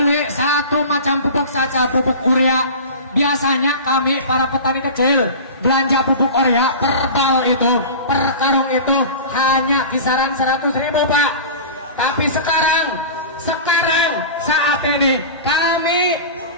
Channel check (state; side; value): inverted; both; correlation -0.34